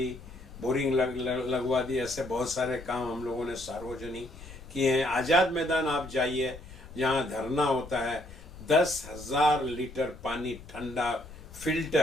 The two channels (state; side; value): noise; left; rumble, 16 dB below the sound